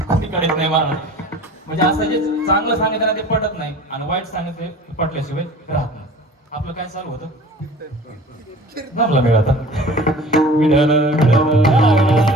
कोणी काढत नाही मला. म्हणजे असं जे चांगलं सांगितलं ना ते पटत नाही आणि वाईट सांगितलं पटल्याशिवाय राहत नाही. आपलं काय चालू होतं? जमला वेळ आता.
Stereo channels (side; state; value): both; normal; correlation 0.43